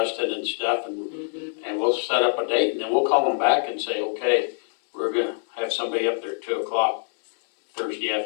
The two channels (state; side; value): silent; right; digital silence